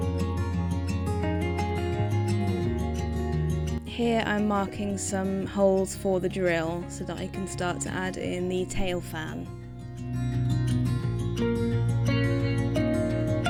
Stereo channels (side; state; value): both; identical; correlation 1.00